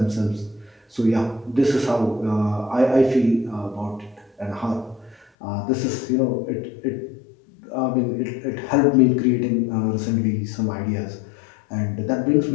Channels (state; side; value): drops out; right; at 5.2 s